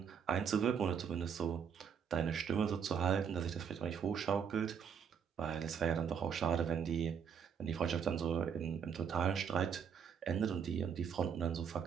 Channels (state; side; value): quieter; left; 7.3 dB